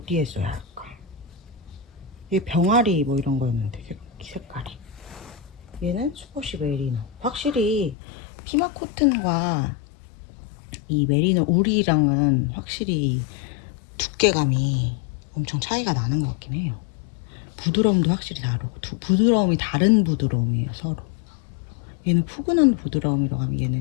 써야 할까? 얘 병아리 뭐 이런 거였는데 색깔이. 얘는 슈퍼시 메리노. 확실히 피마 코튼과 이 메리노 울이랑은 확실히 두께감이 엄청 차이가 나는 것 같긴 해요. 부드러움도 확실히 다르고 부드러움이 다른 부드러움이에요 서로. 얘는 푸근한 부드러움이라고 하면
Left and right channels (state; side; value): drops out; right; at 8.0 s